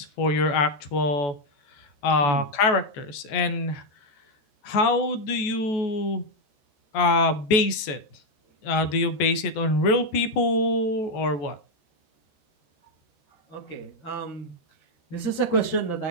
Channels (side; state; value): right; late; 14 ms